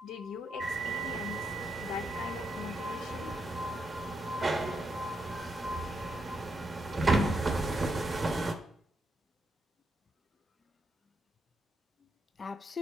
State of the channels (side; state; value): both; normal; correlation 0.81